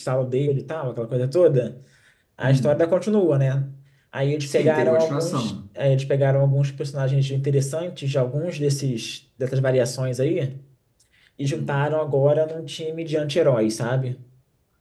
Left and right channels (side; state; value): both; identical; correlation 1.00